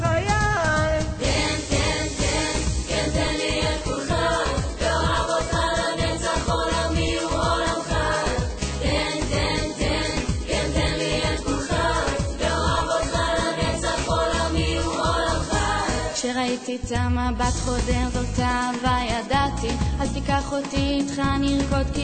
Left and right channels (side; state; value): both; identical; correlation 1.00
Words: כן, כן, כן, כן תן לי את כולך, ואוהב אותך לנצח עולמי הוא עולמך. כן, כן, כן, כן תן לי את כולך, ואוהב אותך לנצח עולמי הוא עולמך. כשראיתי את המבט חודר זאת אהבה ידעתי, אז תיקח אותי איתך נרקוד